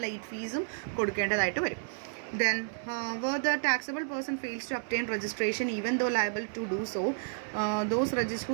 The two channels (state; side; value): silent; left; 57 dB below the other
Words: ലേറ്റ് ഫീസും കൊടുക്കേണ്ടതായിട്ട് വരും. Then where the taxable person fails to obtain registration even though liable to do so, those